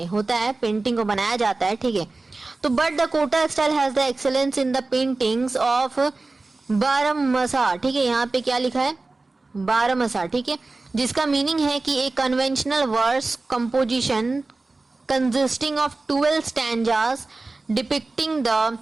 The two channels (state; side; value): quieter; left; 3.4 dB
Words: होता है पेंटिंग को बनाया जाता है, ठीक है। तो but the Kota style has the excellence in the paintings of Barahmasa, ठीक है, यहाँ पे क्या लिखा है, बारहमसा, ठीक है, जिसका मीनिंग है कि एक conventional verse composition consisting of 12 stanzas depicting the